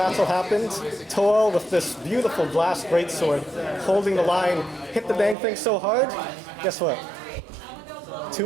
happened. Toel, with this beautiful glass greatsword, holding the line, hit the dang thing so hard. Guess what?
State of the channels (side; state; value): left; drops out; at 5.4 s